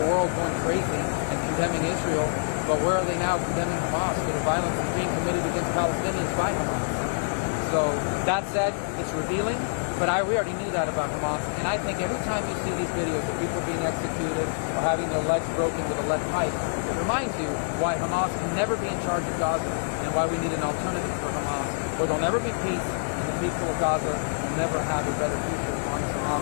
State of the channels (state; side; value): silent; right; digital silence